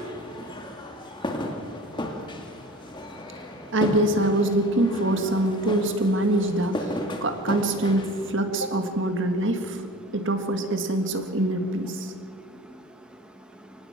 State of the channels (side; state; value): both; normal; correlation 0.40